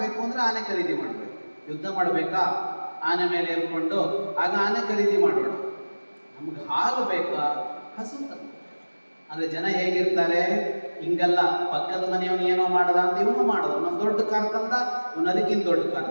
ಅಂದ್ರೆ ಆನೆ ಖರೀದಿ ಮಾಡಬೇಕು. ಯುದ್ಧ ಮಾಡಬೇಕಾ, ಆನೆ ಮೇಲೆ ಏರ್ಕೊಂಡು, ಆಗ ಆನೆ ಖರೀದಿ ಮಾಡೋಣ. ನಮ್ಗೆ ಹಾಲು ಬೇಕಾ, ಹಸು ತಂದು. ಅಂದ್ರೆ ಜನ ಹೇಗಿರ್ತಾರೆ, ಹಿಂಗಲ್ಲ, ಪಕ್ಕದ ಮನೆಯವನು ಏನೋ ಮಾಡದ ಅಂತ ಇವನು ಮಾಡೋದು. ನಮ್ಮ ದೊಡ್ಡ ಕಾರ್ ತಂದ, ಇವನು ಅದಕ್ಕಿಂತ ದೊಡ್ಡ ಕಾರ್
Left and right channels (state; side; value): inverted; both; correlation -1.00